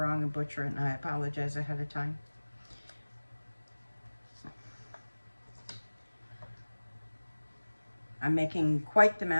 and butcher it, and I apologize ahead of time. I'm making quite the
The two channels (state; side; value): inverted; both; correlation -1.00